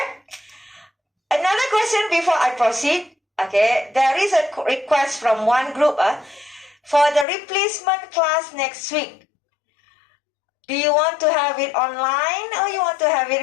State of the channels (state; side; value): drops out; right; at 7.2 s